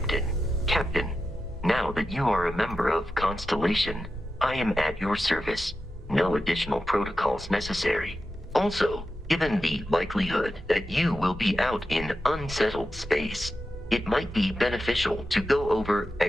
Captain, now that you are a member of Constellation, I am at your service. No additional protocols necessary. Also, given the likelihood that you will be out in unsettled space, it might be beneficial to go over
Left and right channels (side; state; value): both; normal; correlation 0.90